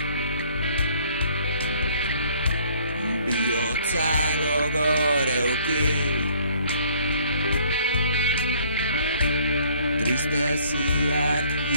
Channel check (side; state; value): both; inverted; correlation -0.58